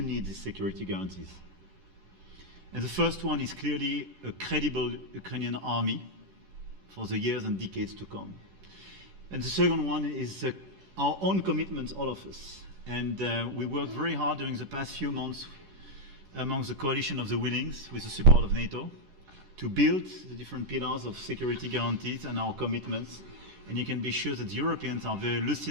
need these security guarantees. And the first one is clearly a credible Ukrainian army for the years and decades to come. And the second one is our own commitment, all of us. And we worked very hard during the past few months amongst the coalition of the willings, with the support of NATO, to build the different pillars of security guarantees and our commitments. And you can be sure that the Europeans are very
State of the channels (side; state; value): left; late; 10 ms